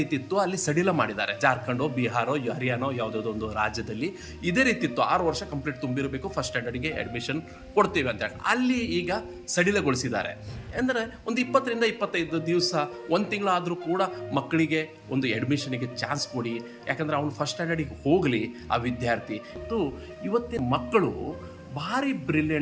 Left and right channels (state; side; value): identical; both; correlation 1.00